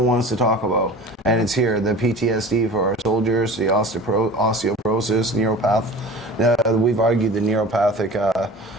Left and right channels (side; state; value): both; normal; correlation 0.39